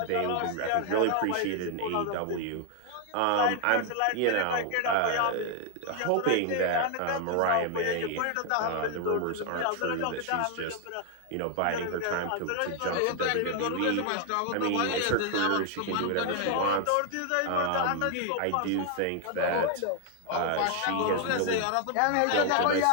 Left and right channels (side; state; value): both; different; correlation 0.00